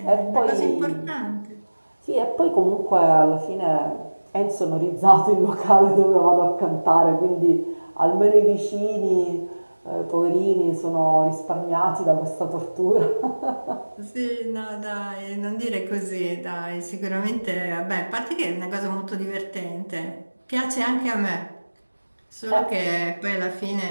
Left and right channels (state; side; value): inverted; both; correlation -1.00